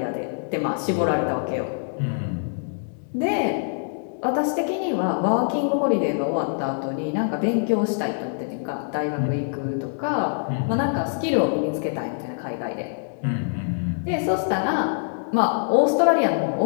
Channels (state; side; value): silent; right; digital silence